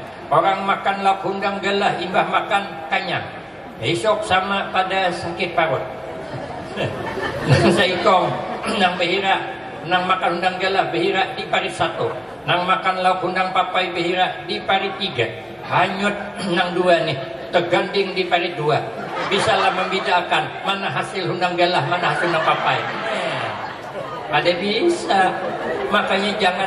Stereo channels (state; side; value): identical; both; correlation 1.00